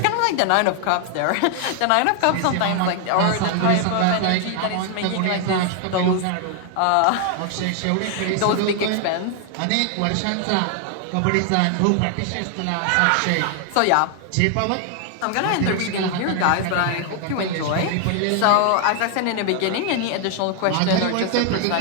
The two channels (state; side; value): different; both; correlation 0.00